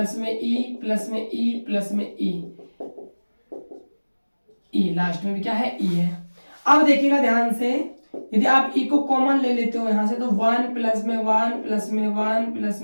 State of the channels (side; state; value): both; inverted; correlation -1.00